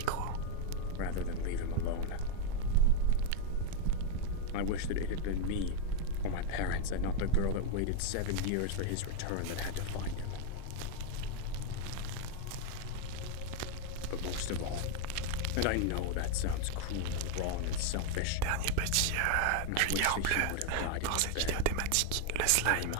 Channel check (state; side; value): different; both; correlation 0.00